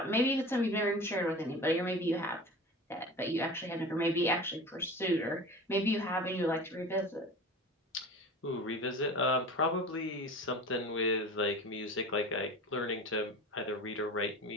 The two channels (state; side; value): normal; both; correlation 0.35